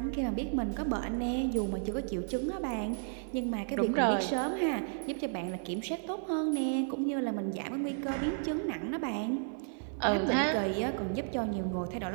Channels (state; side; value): silent; left; digital silence